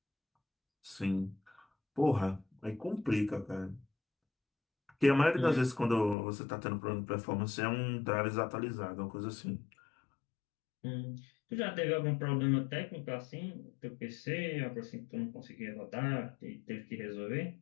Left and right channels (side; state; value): right; drops out; at 6.2 s